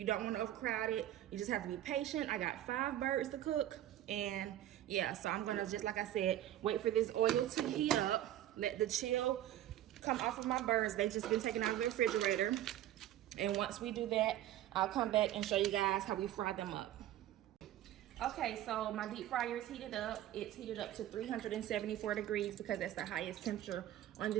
don't want to overcrowd it. You just have to be patient. I got 5 birds to cook, and yeah, so I'm gonna, just like I said, wait for this oil to heat up, let the chill come off of my birds. They've just been taken out of the refrigerator, and once we do that, I'll come back and show you guys how we fry them up. Okay, so my deep fryer is heated up. It's heated up to 374 degrees because that's the highest temperature on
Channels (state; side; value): quieter; left; 12.9 dB